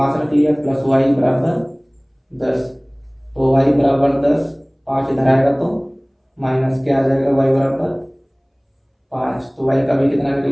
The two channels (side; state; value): both; identical; correlation 1.00